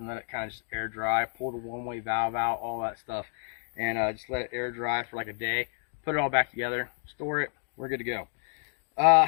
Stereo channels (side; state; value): right; silent; 56 dB below the other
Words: let it kind of just air dry, pull the one-way valve out, all that stuff, and just let it air dry for like a day, put it all back together, store it, we're good to go.